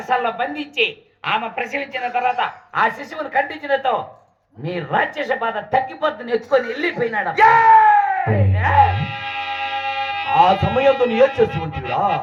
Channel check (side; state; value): both; identical; correlation 1.00